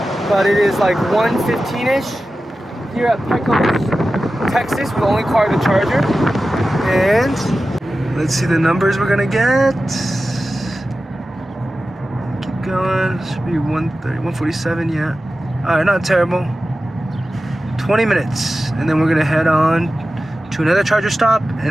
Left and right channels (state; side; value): normal; both; correlation 0.94